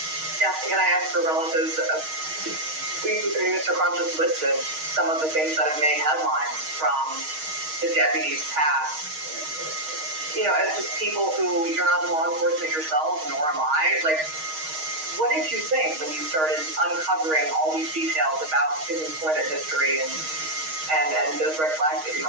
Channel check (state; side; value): late; left; 6.4 ms